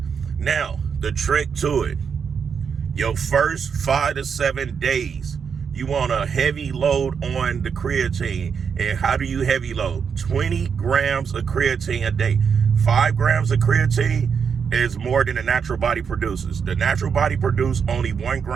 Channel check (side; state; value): left; quieter; 6.6 dB